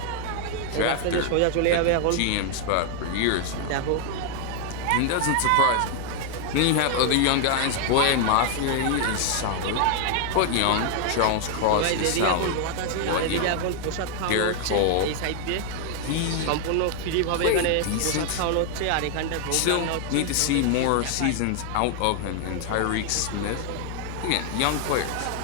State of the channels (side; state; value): both; different; correlation 0.00